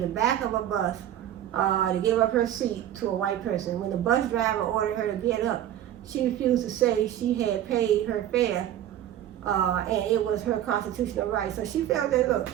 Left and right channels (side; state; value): left; quieter; 11.7 dB